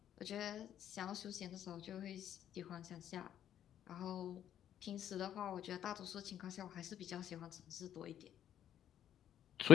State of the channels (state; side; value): quieter; right; 10.4 dB